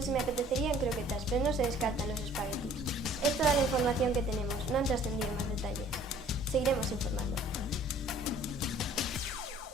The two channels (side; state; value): both; normal; correlation 0.54